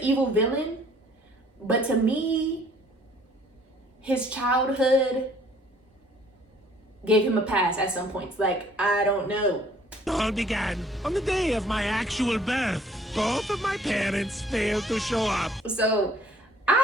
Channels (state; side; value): normal; both; correlation 0.58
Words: evil villain, but to me, his childhood gave him a pass at some points. Like, I don't know. All began on the day of my actual birth. Both of my parents failed to show up. So,